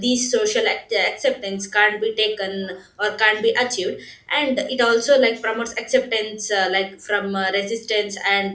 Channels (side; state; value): both; identical; correlation 1.00